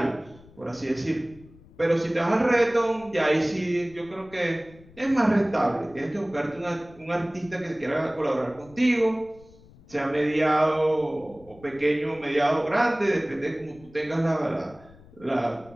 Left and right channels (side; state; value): left; noise; rumble, 24 dB below the sound